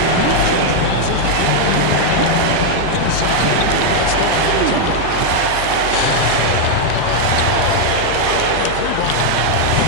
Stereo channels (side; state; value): both; different; correlation 0.00